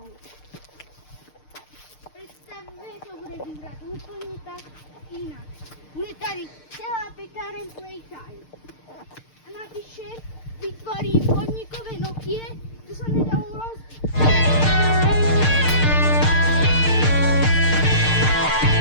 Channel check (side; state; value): right; late; 6.6 ms